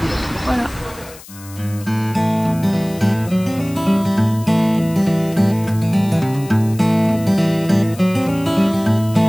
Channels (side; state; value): left; noise; hiss, 19 dB below the sound